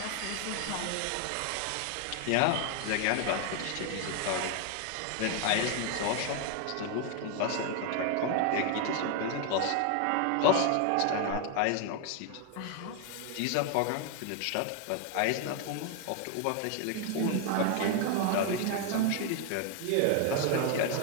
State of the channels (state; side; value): different; both; correlation 0.01